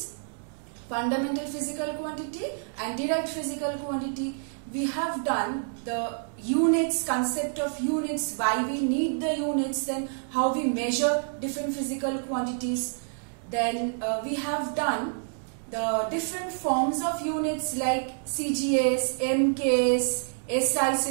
fundamental physical quantity and direct physical quantity. We have done the units, concept of units, why we need the units, then how we measure different physical quantities. Then we have done the different forms of units like CGS, MKS, SI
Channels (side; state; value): left; silent; digital silence